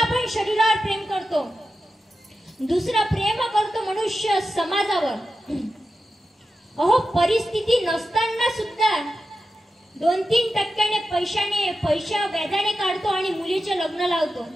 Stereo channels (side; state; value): both; normal; correlation 0.91